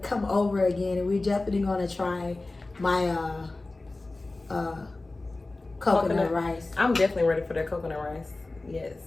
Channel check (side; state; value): right; quieter; 3.1 dB